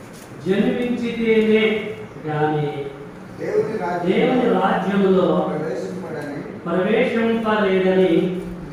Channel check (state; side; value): identical; both; correlation 1.00